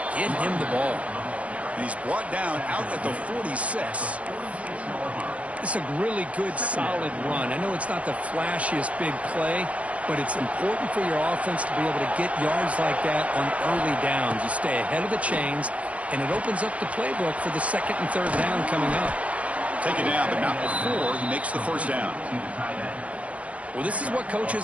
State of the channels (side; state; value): left; late; 0.065 ms